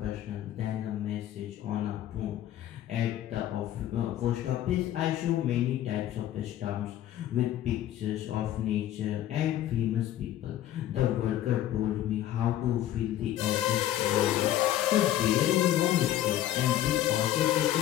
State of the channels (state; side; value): quieter; right; 12.6 dB